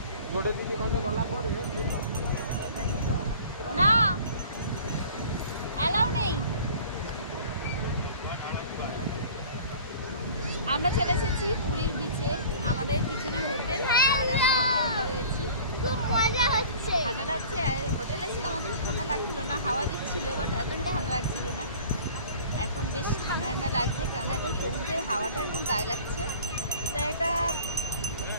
ना अलाउ नहीं। আমরা চলে এসেছি পুরীর বিচে, আমাদের পিছনে হোটেল আর আমরা এখানে রয়েছি। খুব মজা হচ্ছে, ঠান্ডা লাগছে। হোটেলে ছিলাম, অতটা ঠান্ডা লাগছিল না, হাওয়া দিচ্ছিল, বাট এতটা ঠান্ডা লাগছিল না। এখন বেশ ঠান্ডা ঠান্ডা লাগছে, কারণ এখন সমুদ্রের হাওয়াটা একদম গায়ে লাগছে। তাই একটা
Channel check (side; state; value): both; inverted; correlation -0.45